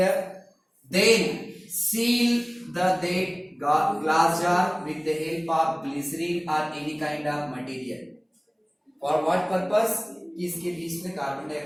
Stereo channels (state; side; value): identical; both; correlation 1.00